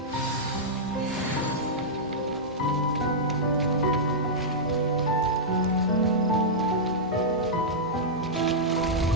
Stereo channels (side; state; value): both; normal; correlation -0.10